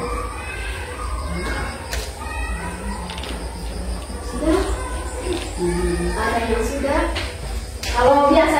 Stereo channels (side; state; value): both; identical; correlation 1.00